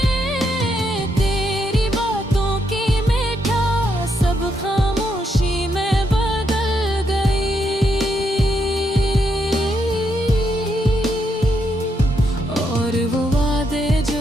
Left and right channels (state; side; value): normal; both; correlation 0.78